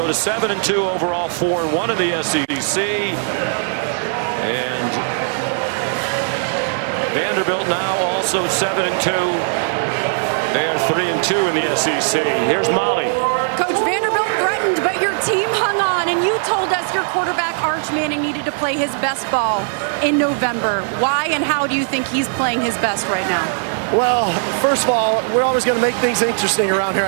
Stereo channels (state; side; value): silent; left; 65 dB below the other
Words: to 7-2 overall, 4-1 in the SEC. And Vanderbilt now also 7-2. They are 3-2 in the SEC. Here's Molly. Coach, Vanderbilt threatened, but your team hung on, and you told us your quarterback Arch Manning needed to play his best ball in November. Why and how do you think he's playing his best right now? Well, first of all, we're always going to make things interesting around here,